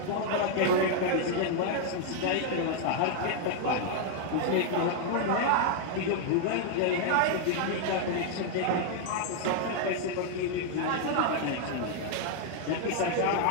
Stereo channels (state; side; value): different; both; correlation 0.00